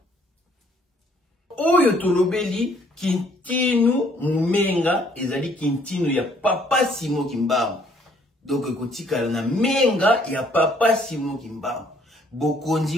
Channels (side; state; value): both; normal; correlation 0.64